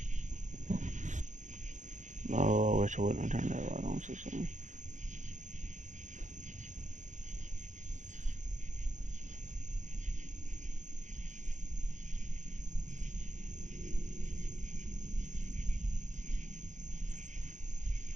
Oh, I wish I wouldn't have turned that light on so soon.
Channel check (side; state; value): left; late; 0.35 ms